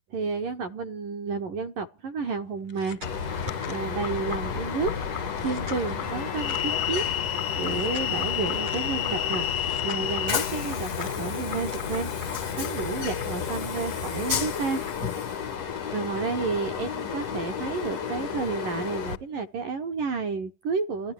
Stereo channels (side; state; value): left; late; 11 ms